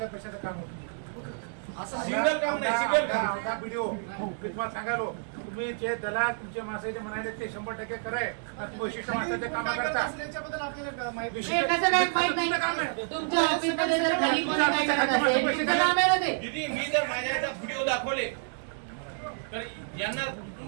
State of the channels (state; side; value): silent; left; digital silence